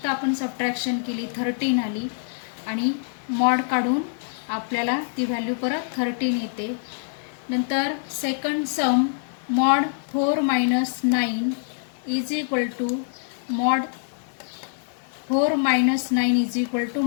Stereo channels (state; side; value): silent; right; 62 dB below the other